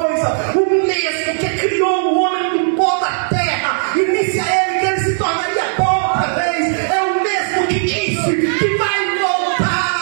o mesmo que criou o homem do pó da terra e disse a ele que ele se tornaria pó outra vez, é o mesmo que disse que vai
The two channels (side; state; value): left; silent; 63 dB below the other